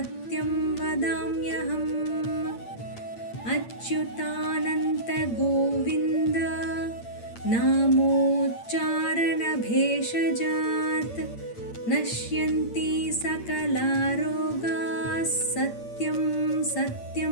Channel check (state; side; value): late; right; 8.7 ms